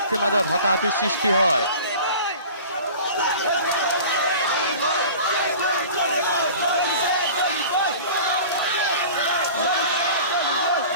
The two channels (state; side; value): inverted; both; correlation -0.40